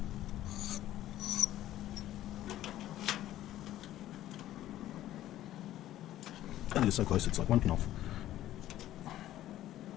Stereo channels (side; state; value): right; quieter; 13.5 dB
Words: And it is so close, it's like 1 pin off.